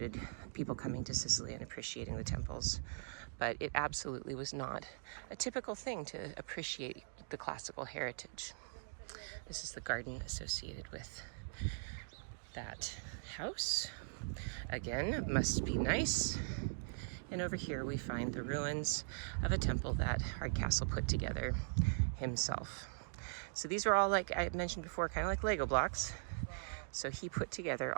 people coming to Sicily and appreciating the temples, but it absolutely was not a typical thing to appreciate the classical heritage. This is the garden associated with that house. Again, must be nice. And over here we find the ruins of a temple that Hardcastle put together himself. So these are all, like I mentioned before, kind of like Lego blocks. So he put together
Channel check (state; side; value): silent; left; digital silence